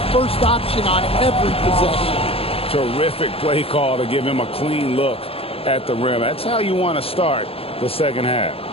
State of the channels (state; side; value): late; right; 0.28 ms